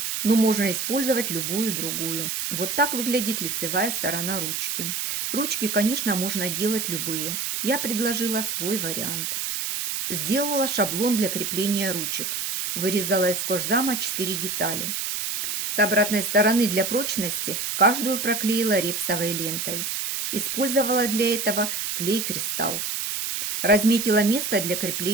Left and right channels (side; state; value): right; noise; hiss, 2 dB below the sound